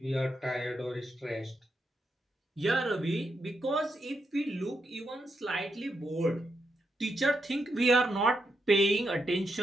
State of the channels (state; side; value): normal; both; correlation 0.83